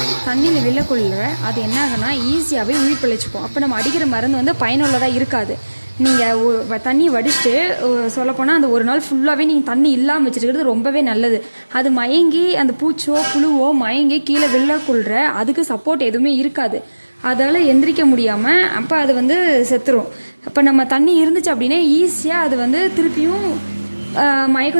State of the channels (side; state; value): both; inverted; correlation -1.00